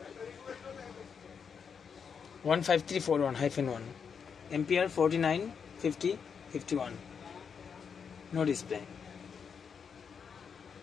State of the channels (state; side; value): quieter; right; 6.5 dB